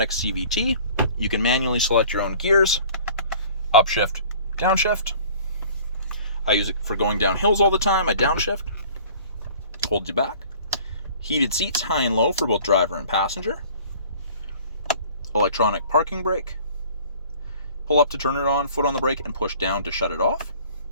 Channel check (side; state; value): both; inverted; correlation -0.49